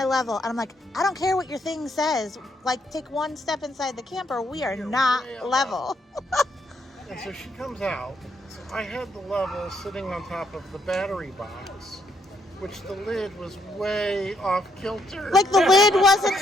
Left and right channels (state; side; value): normal; both; correlation 0.74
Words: level, and I'm like, I don't care what your thing says. Like, take one step inside the camper. We are You're not way above. level. And so she comes out. So I had the level sitting on top of the battery box, which the lid was way off kilter. Like the lid